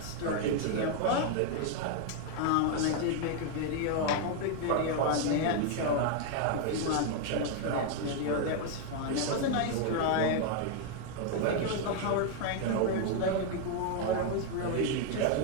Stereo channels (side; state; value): both; different; correlation 0.00